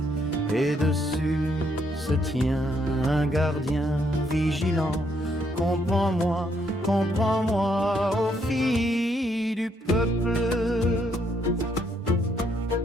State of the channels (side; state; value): both; normal; correlation 0.73